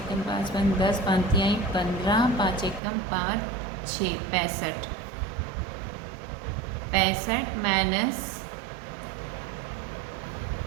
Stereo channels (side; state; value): left; drops out; at 2.8 s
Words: 5 10, 5 तिहाई 15, 5 एकम 5 6 65 माइनस,